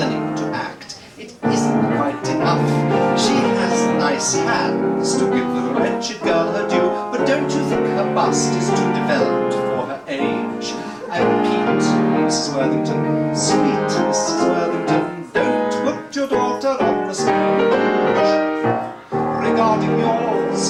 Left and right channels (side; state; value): both; identical; correlation 1.00